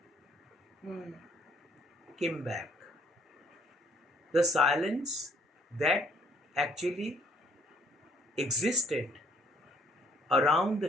came back. The silence that actually existed around the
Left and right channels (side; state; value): both; normal; correlation 0.63